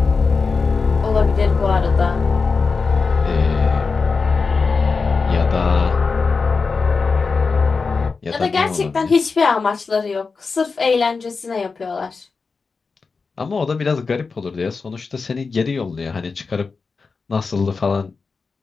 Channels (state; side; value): quieter; right; 4.6 dB